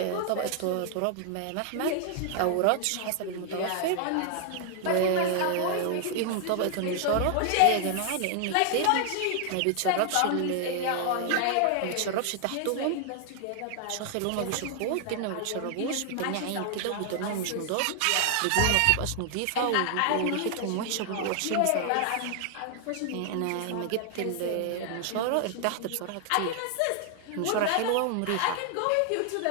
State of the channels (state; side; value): different; both; correlation 0.00